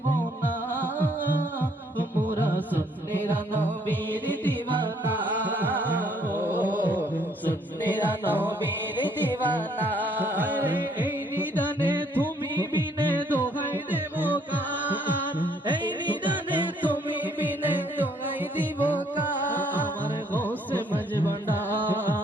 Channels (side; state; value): both; normal; correlation 0.65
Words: না, মোরা সুন্নিরা নবীর দিওয়ানা, ও সুন্নিরা নবীর দিওয়ানা। এই নিদানে তুমি বিনে দোহাই দেব কার, এই নিদানে তুমি বিনে দোহাই দিব কার। আমার গোসে